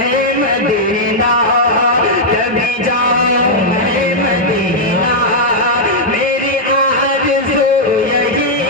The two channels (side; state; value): both; normal; correlation -0.05